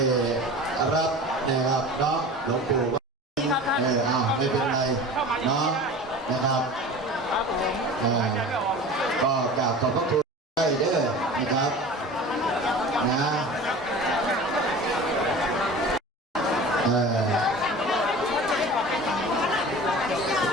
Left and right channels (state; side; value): normal; both; correlation 0.38